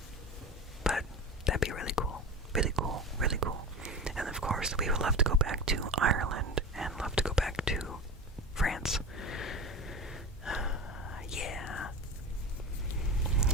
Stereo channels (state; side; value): normal; both; correlation 0.28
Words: But that'd be really cool. Really cool. And of course, we would love to go back to Ireland and love to go back to France.